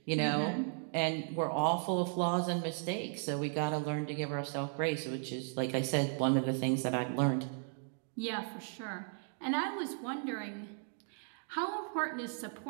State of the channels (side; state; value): left; silent; 54 dB below the other